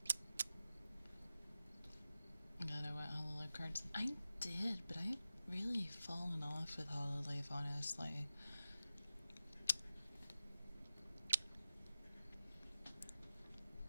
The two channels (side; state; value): both; inverted; correlation -0.93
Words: Cards. I did, but I've really fallen off with Hololive, honestly.